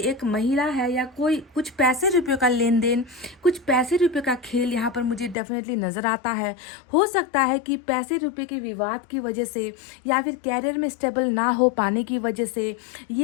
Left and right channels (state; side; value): drops out; right; at 5.4 s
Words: महिला है या कोई कुछ पैसे रुपये का लेन देन, कुछ पैसे रुपये का खेल यहाँ पर मुझे डेफिनेटली नज़र आता है। हो सकता है कि पैसे रुपये के विवाद की वजह से या फिर कैरियर में स्टेबल ना हो पाने की वजह से,